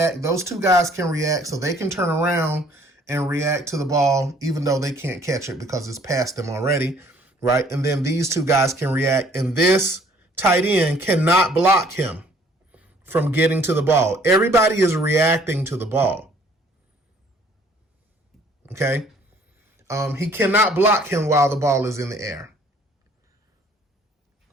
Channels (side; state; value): both; normal; correlation 0.59